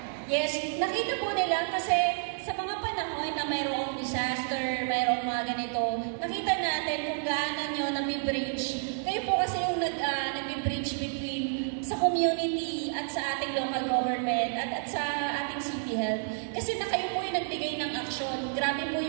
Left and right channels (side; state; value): left; silent; digital silence